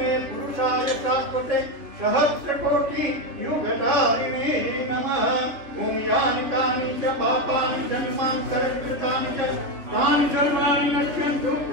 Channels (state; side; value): late; left; 3.1 ms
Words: पुरुषाय शाश्वते सहस्रकोटि युगधारिणे नमः। ओम यानि कानि च पापानि जन्मां सर्वकृतानि च तानि सर्वाणि नश्यन्तु